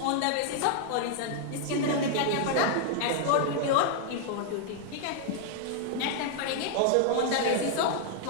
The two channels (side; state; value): both; different; correlation 0.00